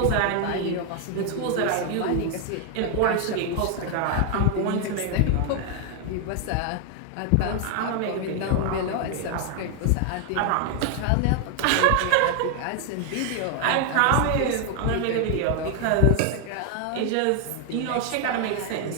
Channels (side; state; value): both; different; correlation 0.00